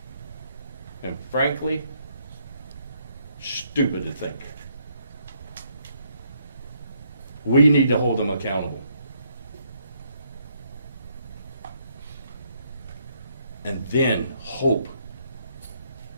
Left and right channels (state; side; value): inverted; both; correlation -0.72